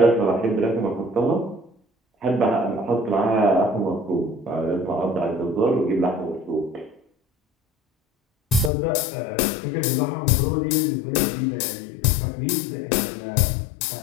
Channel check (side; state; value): right; drops out; at 8.7 s